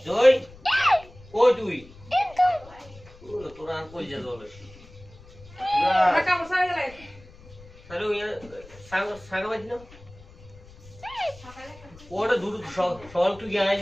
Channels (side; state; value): left; noise; rumble, 21 dB below the sound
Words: জয় কই তুই তোরা আর কই যা জলে টাকা বসাই গেলে তাহলে ওই সাগা বাজি না ওটা দূর সল তুই আই